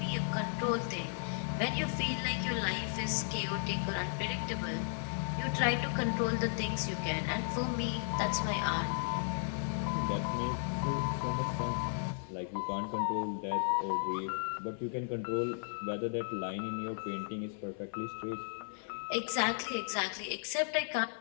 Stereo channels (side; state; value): right; silent; 54 dB below the other